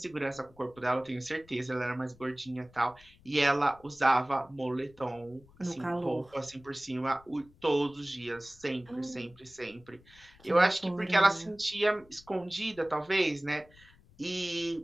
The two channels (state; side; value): noise; left; rumble, 26 dB below the sound